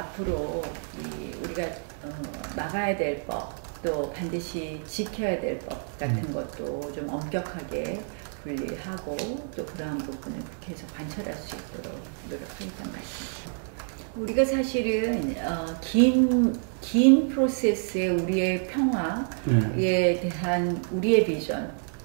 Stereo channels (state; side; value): silent; left; 59 dB below the other